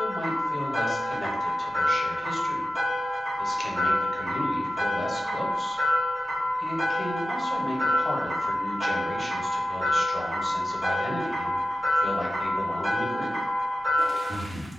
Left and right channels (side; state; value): both; normal; correlation 0.94